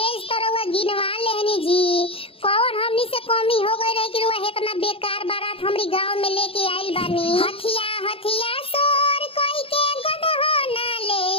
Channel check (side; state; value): right; late; 0.27 ms